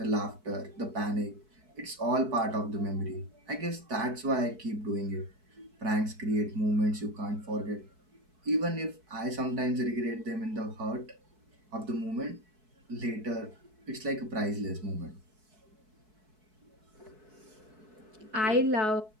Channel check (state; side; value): late; left; 4.6 ms